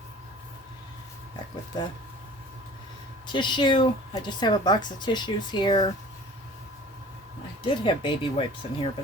Back with the tissue. I just have a box of tissues here. I did have baby wipes in here,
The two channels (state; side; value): normal; both; correlation 0.46